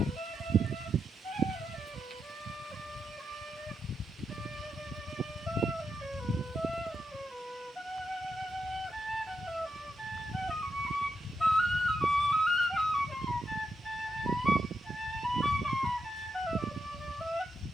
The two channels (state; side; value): normal; both; correlation 0.84